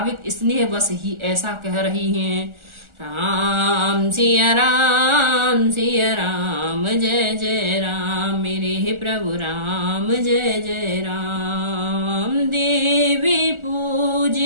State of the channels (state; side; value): late; left; 1.4 ms